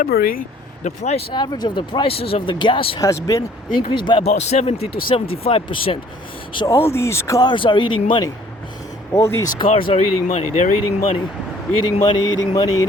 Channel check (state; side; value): normal; both; correlation 0.57